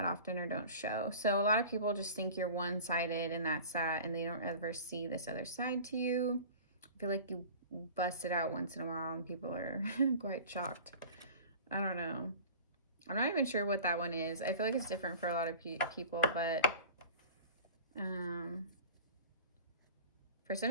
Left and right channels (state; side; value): inverted; both; correlation -0.40